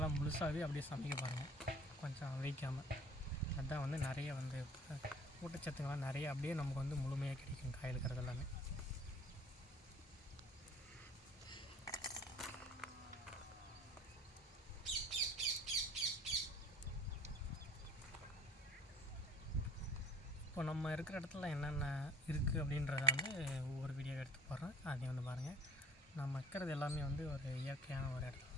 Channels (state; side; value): normal; both; correlation 0.49